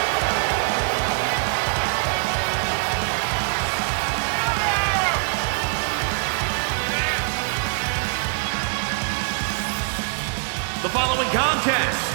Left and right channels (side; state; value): left; silent; digital silence